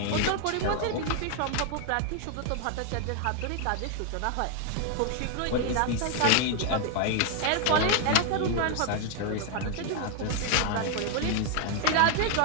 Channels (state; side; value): different; both; correlation 0.00